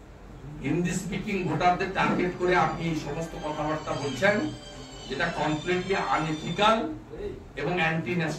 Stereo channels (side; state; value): both; identical; correlation 1.00